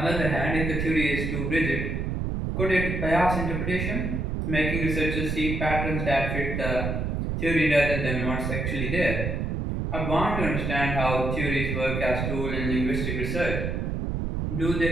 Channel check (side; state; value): right; noise; rumble, 2 dB below the sound